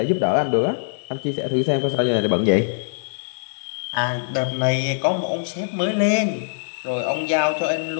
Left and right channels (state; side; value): silent; right; digital silence